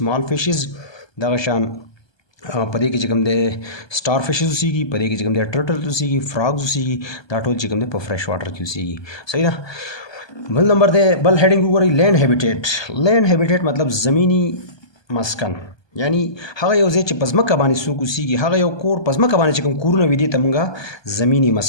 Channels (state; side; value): late; right; 1.2 ms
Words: फिशेस दगशान पदे की चिकम दे स्टार फिशेस उसी की पदे की चिकम दे टर्टल उसी की फ्रॉग्स उसी की दाटोल चिकम दे फ्रेश वाटर की उसी की सही था बल नंबर दे बल हेडिंग ऊपर लैंड हैबिटेट मतलब ज़मीनी मस्कन यानी हगा यो जे पज़मका बानी सूक उसी की हगा यो कोर पज़मका बानी चिकम कूरन विदि तमंगा ज़मीनी